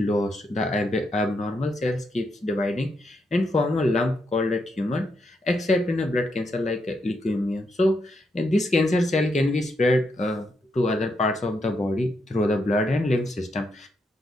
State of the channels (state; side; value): normal; both; correlation 0.80